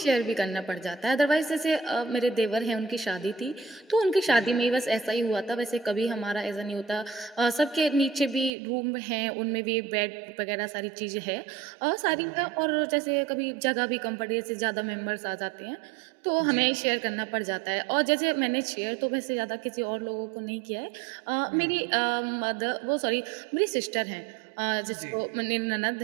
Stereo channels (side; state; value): left; drops out; at 8.5 s